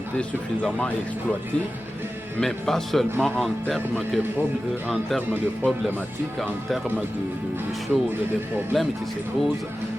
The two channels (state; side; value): normal; both; correlation 0.94